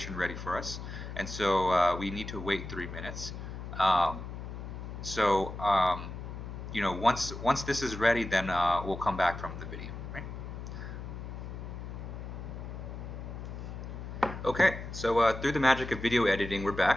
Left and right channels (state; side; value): noise; left; hum, 8 dB below the sound